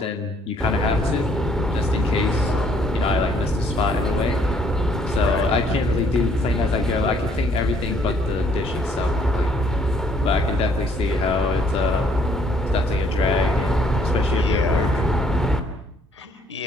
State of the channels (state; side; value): normal; both; correlation 0.65